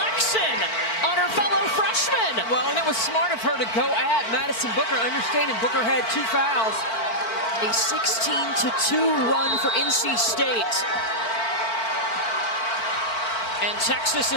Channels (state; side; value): late; right; 4.5 ms